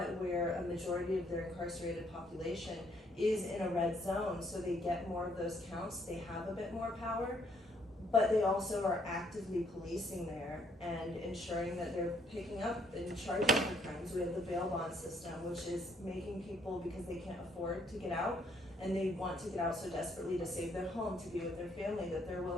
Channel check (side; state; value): both; normal; correlation 0.68